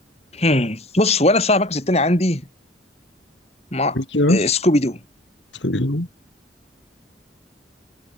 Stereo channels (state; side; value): normal; both; correlation 0.45